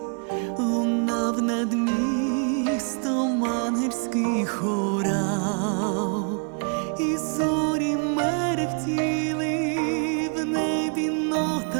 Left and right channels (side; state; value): left; quieter; 39.5 dB